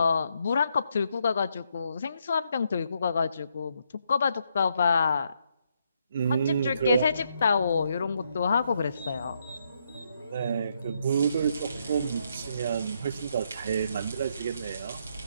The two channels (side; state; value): both; inverted; correlation -0.76